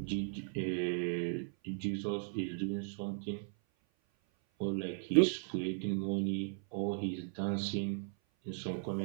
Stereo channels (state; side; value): silent; left; 53 dB below the other